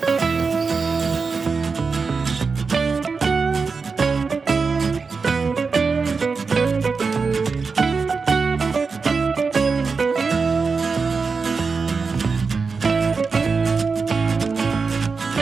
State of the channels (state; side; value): quieter; left; 4.8 dB